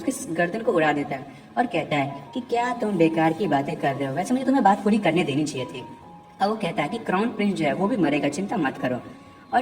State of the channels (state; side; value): identical; both; correlation 1.00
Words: गर्दन को उड़ा देता है और कहता है कि क्या तुम बेकार की बातें कर रहे हो, वैसे मुझे तुम्हें बात पूरी करने देनी चाहिए थी। और वो कहता है कि क्राउन प्रिंस जो है वो भी मरेगा, चिंता मत करो।